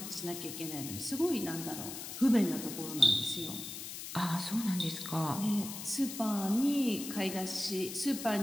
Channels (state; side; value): noise; left; hiss, 8 dB below the sound